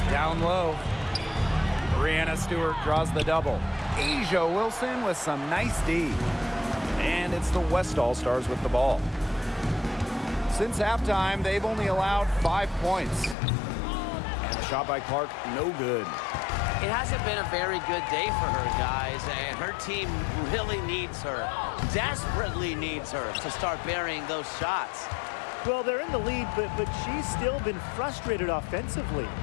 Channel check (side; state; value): right; drops out; at 13.4 s